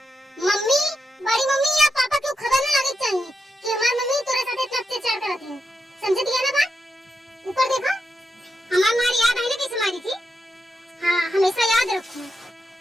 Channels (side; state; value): both; normal; correlation 0.86